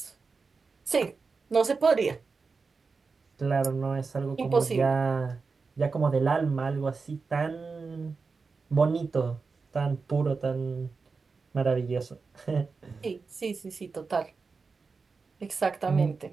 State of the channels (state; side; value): quieter; left; 4.6 dB